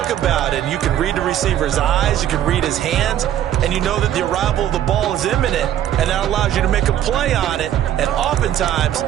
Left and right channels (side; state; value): left; quieter; 11.3 dB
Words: about. And you can read the receiver's eyes, you can read his hands, and you know that the arrival of the ball is imminent. And that allows you to make a play on it and oftentimes